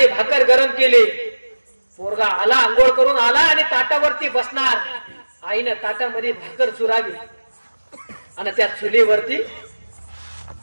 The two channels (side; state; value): both; inverted; correlation -1.00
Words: भाकर गरम केली. पोरगा आला, आंघोळ करून आला आणि ताटावरती बसणार. आईनं ताटामध्ये भाकर चुरावी आणि त्या चुलीवरती